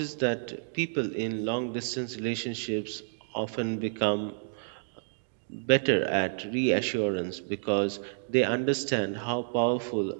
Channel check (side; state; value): left; silent; digital silence